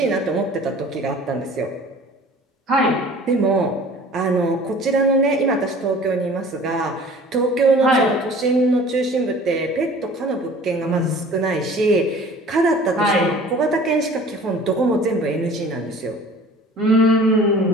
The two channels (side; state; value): both; normal; correlation 0.46